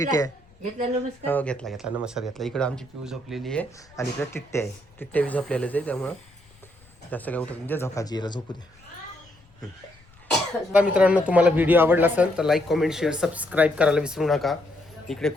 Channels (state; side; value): noise; left; rumble, 29 dB below the sound